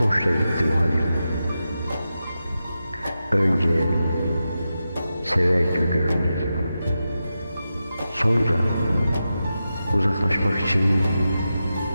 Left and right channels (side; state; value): both; inverted; correlation -0.90